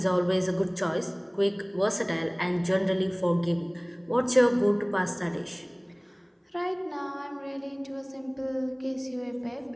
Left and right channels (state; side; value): identical; both; correlation 1.00